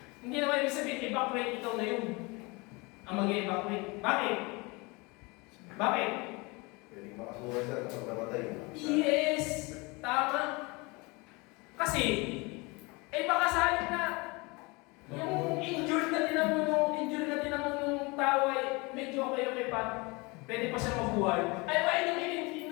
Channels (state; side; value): quieter; right; 26.5 dB